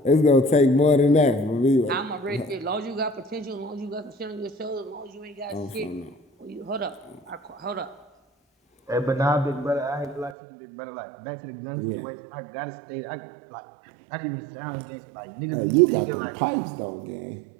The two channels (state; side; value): drops out; left; at 10.4 s